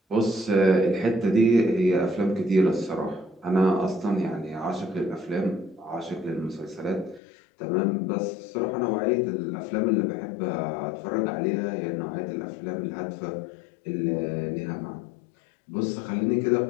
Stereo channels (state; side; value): drops out; right; at 7.2 s